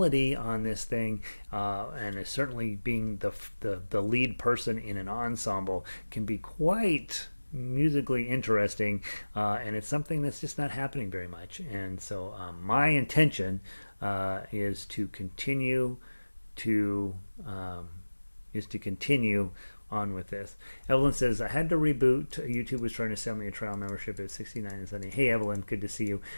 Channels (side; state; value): both; inverted; correlation -1.00